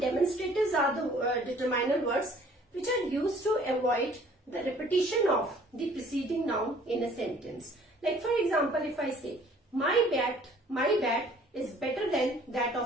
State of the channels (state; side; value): normal; both; correlation 0.55